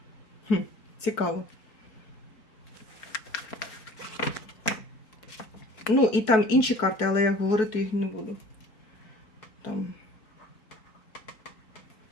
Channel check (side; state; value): right; late; 4.6 ms